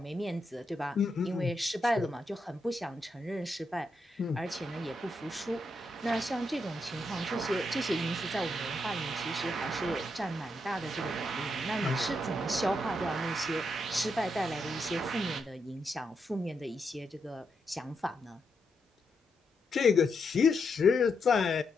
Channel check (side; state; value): both; normal; correlation 0.81